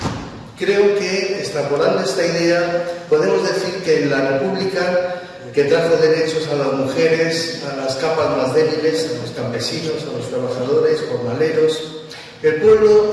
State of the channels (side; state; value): both; identical; correlation 1.00